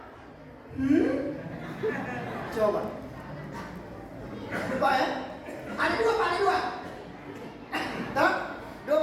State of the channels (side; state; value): both; identical; correlation 1.00